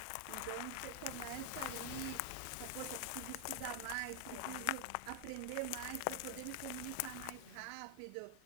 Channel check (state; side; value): different; both; correlation 0.00